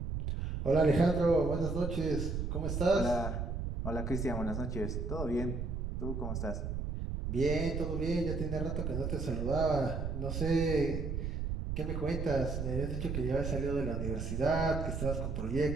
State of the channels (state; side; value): noise; right; rumble, 2 dB below the sound